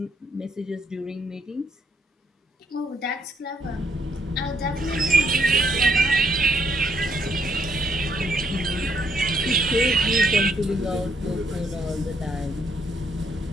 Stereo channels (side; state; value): both; normal; correlation 0.72